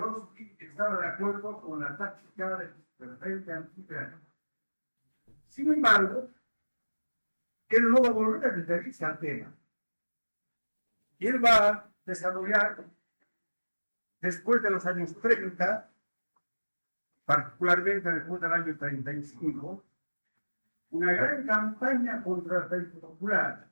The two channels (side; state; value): both; inverted; correlation -1.00